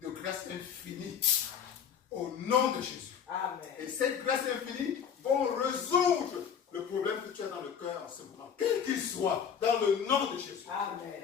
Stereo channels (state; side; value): quieter; right; 7.7 dB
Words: de grâce infinie. Au nom de Jésus. Amen. Et cette grâce infinie va résoudre le problème que tu as dans le cœur en ce moment, quel qu'il soit, dans le nom de Jésus. Amen.